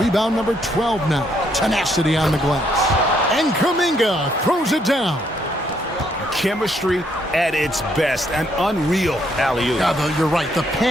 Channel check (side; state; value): both; normal; correlation 0.72